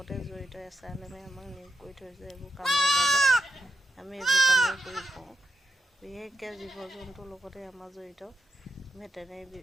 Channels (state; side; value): normal; both; correlation 0.83